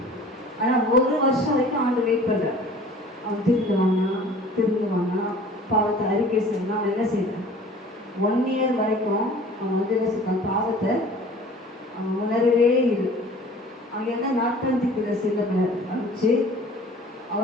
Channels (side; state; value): both; normal; correlation 0.47